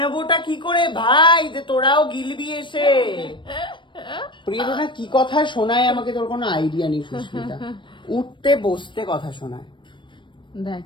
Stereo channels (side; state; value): right; late; 0.23 ms